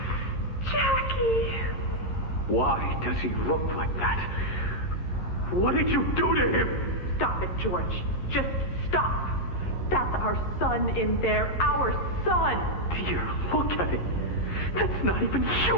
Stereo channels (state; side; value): late; right; 11 ms